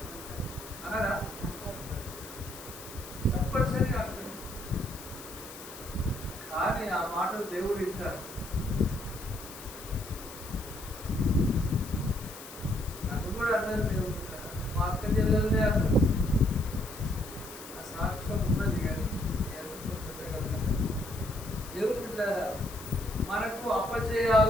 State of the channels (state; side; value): noise; left; hiss, 14 dB below the sound